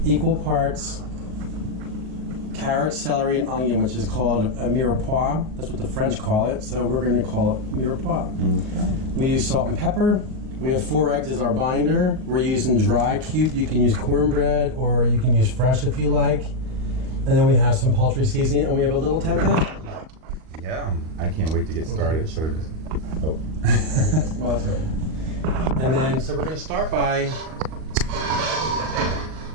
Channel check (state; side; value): late; left; 38 ms